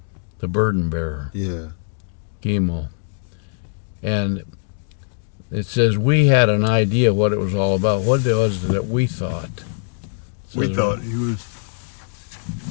The burden bearer. Yeah. Gimel. And it says we had an idea what it was all about. What was it that we thought? We thought he was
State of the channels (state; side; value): silent; right; digital silence